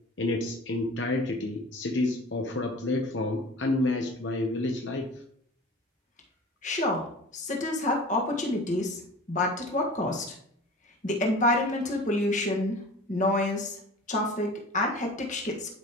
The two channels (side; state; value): both; normal; correlation 0.40